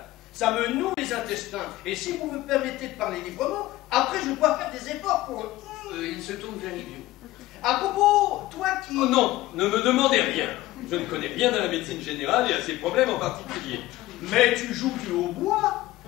Ça me noue les intestins. Et si vous me permettez de parler librement, après je dois faire des efforts pour... Il se tourne vers Ivio. À propos, toi qui... Oh non, ne me demandez rien. Je ne connais rien à la médecine générale et à ses problèmes en particulier. Mais tu joues du hautbois.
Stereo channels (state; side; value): quieter; right; 17.0 dB